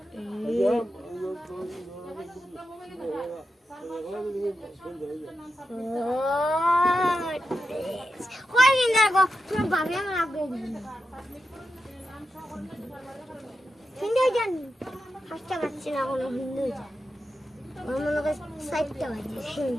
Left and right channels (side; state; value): both; normal; correlation 0.89